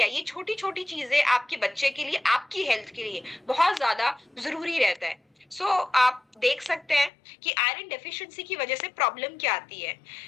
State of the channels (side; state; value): right; drops out; at 7.1 s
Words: ये छोटी छोटी चीजें आपके बच्चे के लिए, आपकी हेल्थ के लिए बहुत ज्यादा जरूरी रहता है। सो आप देख सकते हैं कि आयरन डेफिशिएंसी की वजह से प्रॉब्लम क्या आती है।